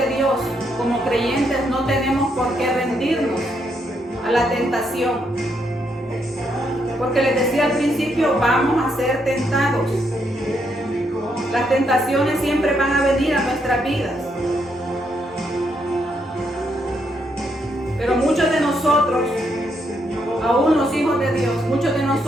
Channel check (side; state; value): both; normal; correlation 0.77